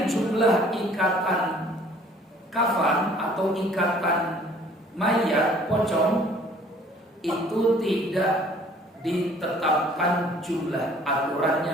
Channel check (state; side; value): normal; both; correlation 0.55